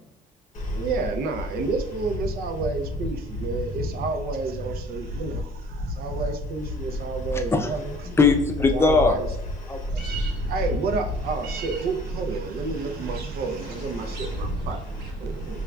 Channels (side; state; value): both; normal; correlation 0.52